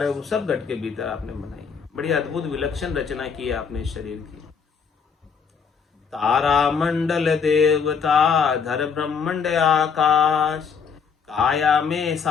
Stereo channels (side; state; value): right; quieter; 6.2 dB